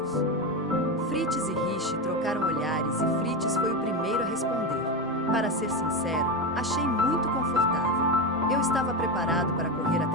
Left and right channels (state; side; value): normal; both; correlation 0.15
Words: Fritz e Riche trocaram olhares e Fritz foi o primeiro a responder. "Para ser sincero, achei muito confortável. Eu estava preparado para correr